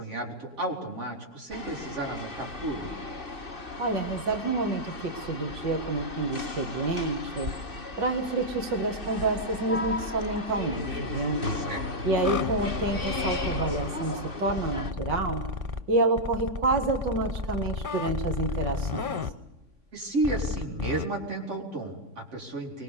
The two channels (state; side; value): late; left; 3.5 ms